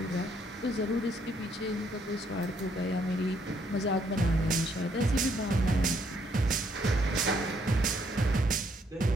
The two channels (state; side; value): normal; both; correlation 0.70